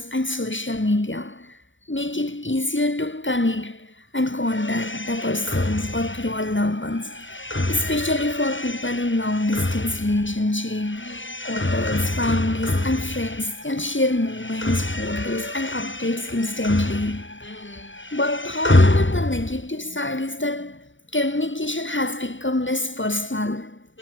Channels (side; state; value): right; late; 0.56 ms